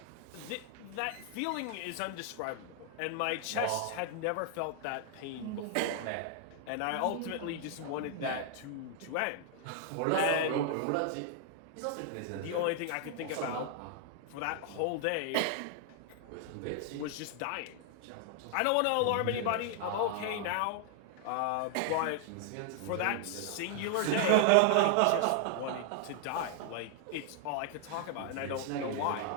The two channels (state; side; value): different; both; correlation 0.00